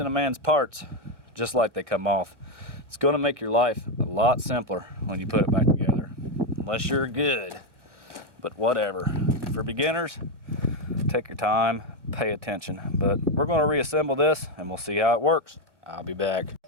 a man's parts just like they come off. It's going to make your life a lot simpler when you put it back together, unless you're good, but whatever. For beginners, take your time, pay attention, but we're going to reassemble this and we'll see how it works. I'll be back.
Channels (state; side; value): late; left; 1.0 ms